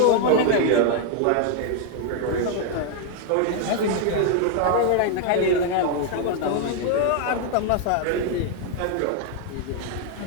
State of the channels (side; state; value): both; different; correlation 0.00